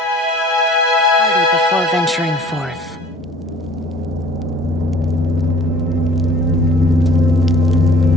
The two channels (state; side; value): normal; both; correlation 0.51